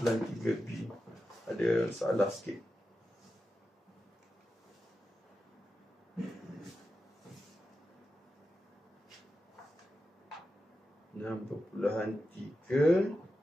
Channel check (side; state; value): both; normal; correlation 0.91